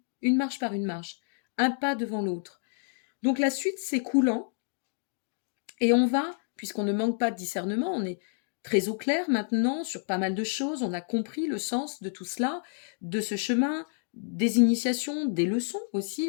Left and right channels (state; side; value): silent; right; 58 dB below the other